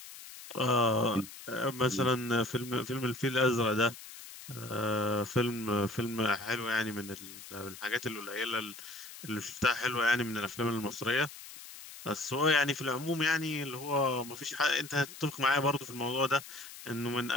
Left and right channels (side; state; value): left; noise; hiss, 15 dB below the sound